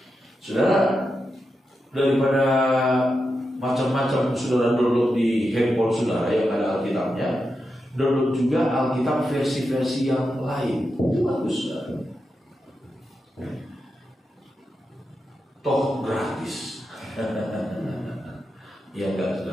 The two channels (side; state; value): both; normal; correlation 0.88